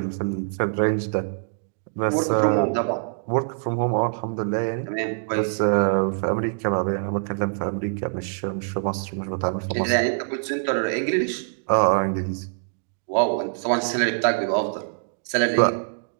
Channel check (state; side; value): silent; left; digital silence